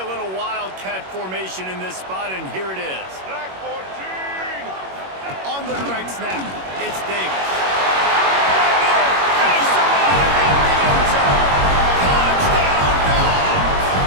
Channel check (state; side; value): late; left; 21 ms